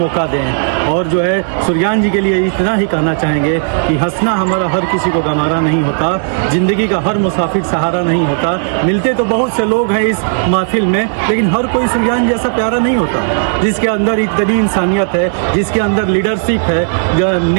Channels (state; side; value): silent; left; digital silence